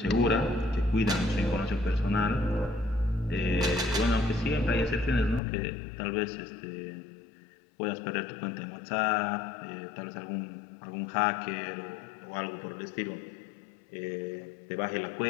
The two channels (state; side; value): drops out; right; at 5.4 s